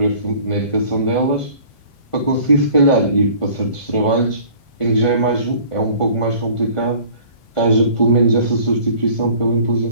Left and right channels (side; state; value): right; late; 1.5 ms